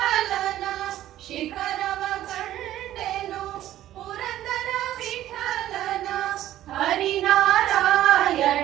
ಶಿಖರವ ಕಂಡೆನು ಪುರಂದರ ವಿಠಲನ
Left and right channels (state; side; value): quieter; left; 13.3 dB